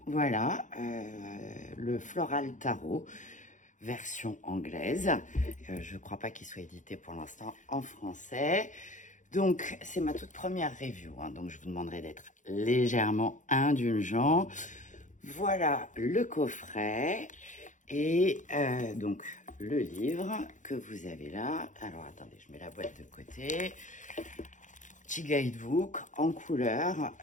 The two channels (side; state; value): right; late; 0.36 ms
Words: Voilà, le Floral Tarot version anglaise. Je ne crois pas qu'il soit édité pour l'instant en français. Donc, c'est ma toute première review, hein, donc je vous demanderai d'être légèrement indulgent. Voilà le coffret. Et donc, le livre que vous avez là. Alors, attendez, je mets la boîte de côté. Petit guidebook en couleur.